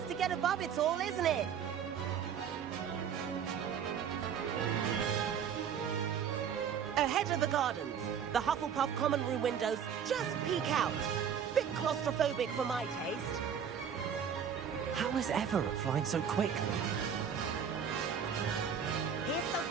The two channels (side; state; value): left; quieter; 7.8 dB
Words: to get above it all, isn't it? Ahead of the gardens, the Hufflepuff common room windows just peek out. Bit claustrophobic for my taste. How is Everett flying so quickly? Here's